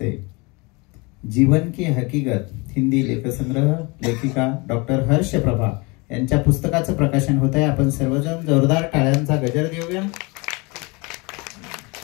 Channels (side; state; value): right; quieter; 27.4 dB